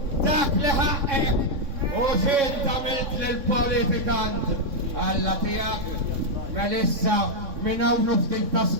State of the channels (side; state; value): left; late; 3.6 ms